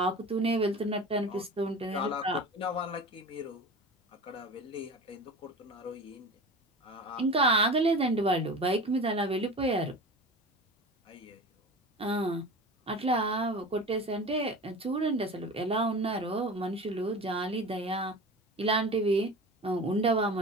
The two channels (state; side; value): normal; both; correlation 0.33